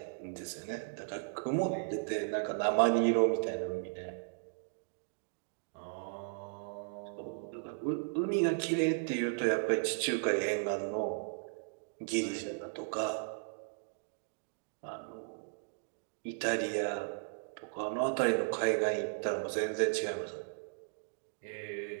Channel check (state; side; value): silent; left; digital silence